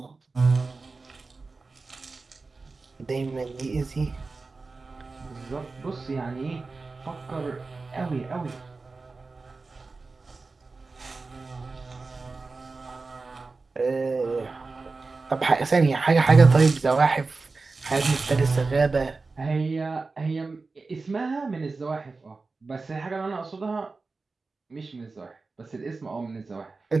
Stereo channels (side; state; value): left; quieter; 3.9 dB